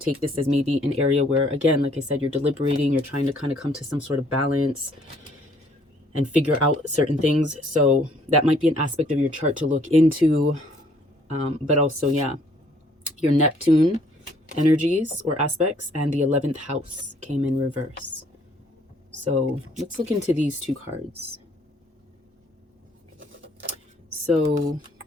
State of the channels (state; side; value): normal; both; correlation 0.62